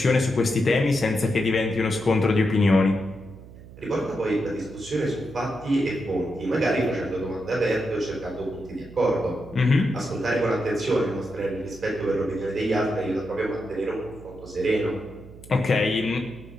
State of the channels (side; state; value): right; noise; hum, 18 dB below the sound